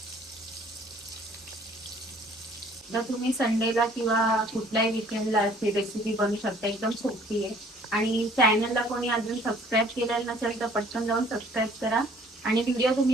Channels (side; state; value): both; normal; correlation 0.56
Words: तर तुम्ही संडेला किंवा कुठल्याही विकेंडला ही रेसिपी बनवू शकता. एकदम सोपी आहे. आणि चॅनलला कोणी अजून सबस्क्राईब केलेलं नसेल तर पटकन जाऊन सबस्क्राईब करा. आणि व्हिडिओ